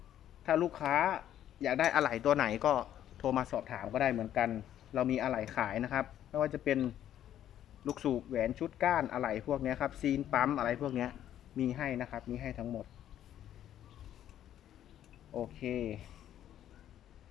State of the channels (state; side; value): quieter; right; 11.2 dB